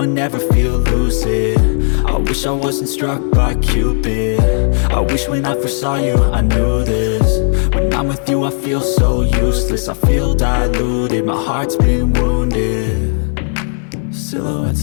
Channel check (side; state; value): right; silent; digital silence